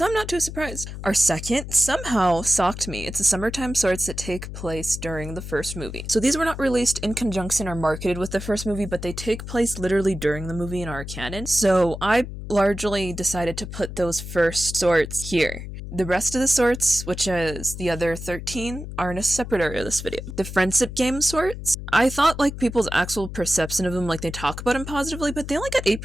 I'm not too surprised. Our second somehow shocked me. It's the summertime sorts that take place during the first movie. So these were not released in conjunction or marketed with the first movie, but they take place literally during the movie in our canon. So I largely decided to put those first sorts here. The rest of the sorts, which is the other 13, are in a separate area of this video. The Friendship Game sorts, I thought like people's actual perception of them, like they talk about them positively, but they only got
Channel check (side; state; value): left; noise; hum, 9 dB below the sound